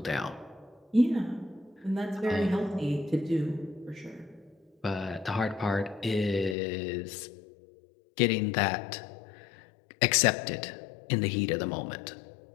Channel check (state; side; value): drops out; right; at 6.6 s